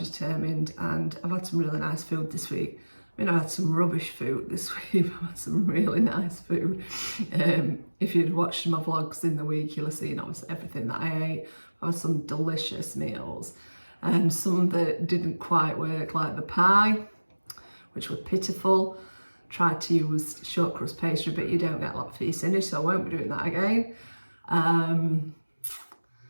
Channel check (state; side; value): inverted; both; correlation -1.00